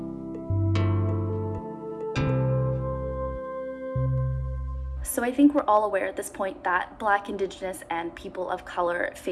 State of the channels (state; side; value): identical; both; correlation 1.00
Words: So I think we're all aware at this point that Black, Indigenous, and people of color